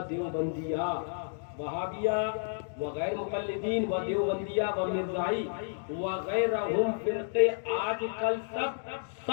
دیوبندیہ، وہابیہ و غیر مقلدین و دیوبندیہ و مرزائی وغیرہم فرقے آج کل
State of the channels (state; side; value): silent; right; digital silence